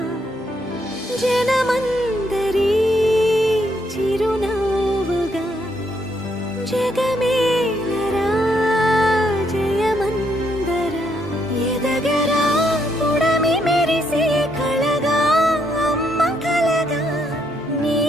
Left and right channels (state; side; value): normal; both; correlation 0.74